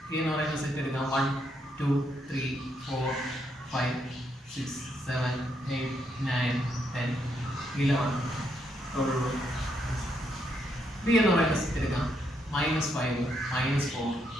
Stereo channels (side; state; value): both; normal; correlation 0.77